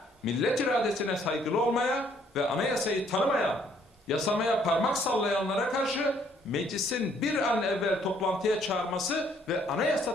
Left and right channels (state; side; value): normal; both; correlation 0.65